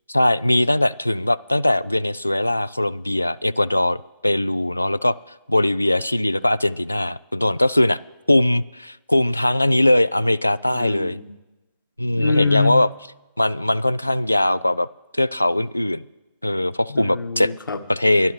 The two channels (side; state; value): both; inverted; correlation -0.97